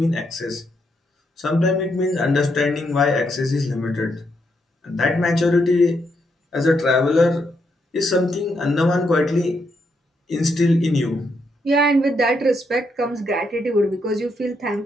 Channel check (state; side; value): normal; both; correlation 0.78